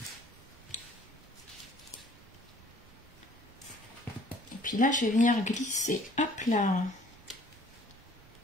Et puis là, je vais venir glisser, hop là,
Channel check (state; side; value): normal; both; correlation 0.55